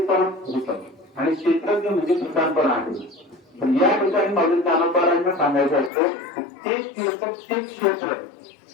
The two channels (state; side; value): drops out; right; at 5.9 s